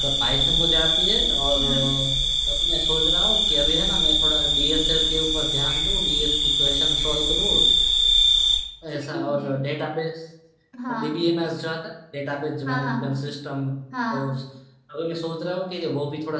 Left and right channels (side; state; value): both; identical; correlation 1.00